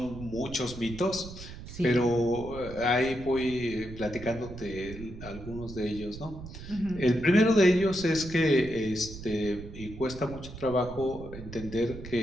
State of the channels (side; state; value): right; noise; rumble, 13 dB below the sound